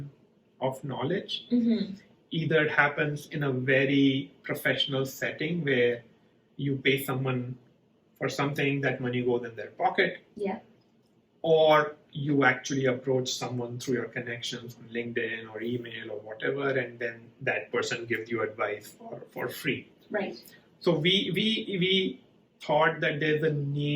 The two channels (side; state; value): both; identical; correlation 1.00